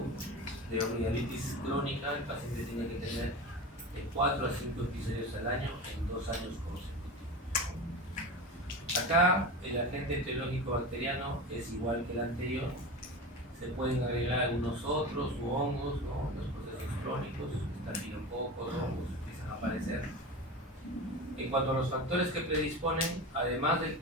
de amigdalitis crónica, el paciente tiene que tener de 4 a 5 episodios al año en 2 años consecutivos. Acá el agente etiológico bacteriano es igual que el anterior. Se pueden agregar algunos otros u hongos, ¿no? Los procesos crónicos, estafilococos, hongos empiezan a aparecer. En cuanto a los factores que predisponen, además del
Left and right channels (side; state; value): both; normal; correlation 0.28